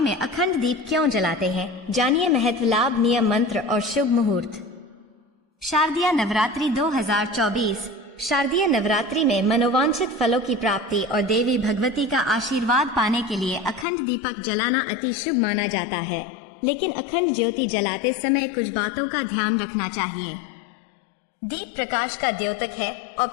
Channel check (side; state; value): right; drops out; at 13.9 s